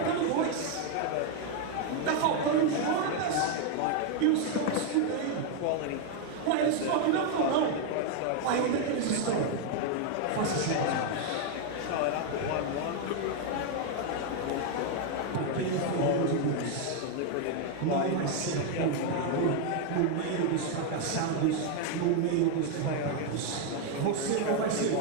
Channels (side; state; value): both; different; correlation 0.01